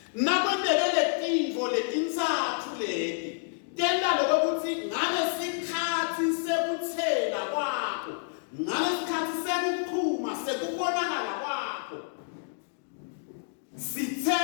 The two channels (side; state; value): right; silent; digital silence